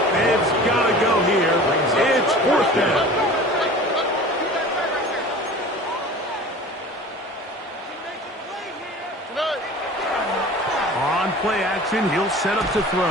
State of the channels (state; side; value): normal; both; correlation 0.40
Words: It's got to go here. It's 4th down. On play action. He'll set up to